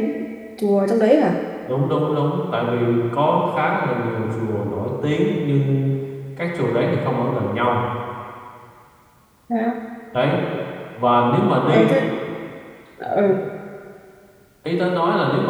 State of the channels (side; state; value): both; identical; correlation 1.00